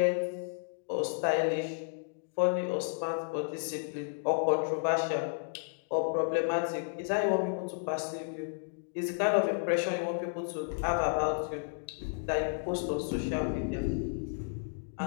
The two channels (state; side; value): silent; right; digital silence